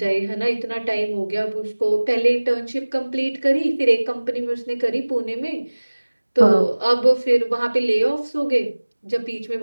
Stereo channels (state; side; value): inverted; both; correlation -1.00